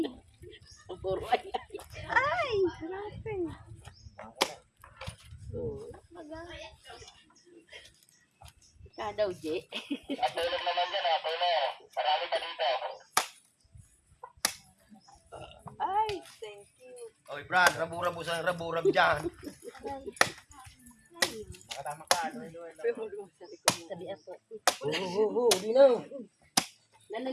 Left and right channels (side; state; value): both; identical; correlation 1.00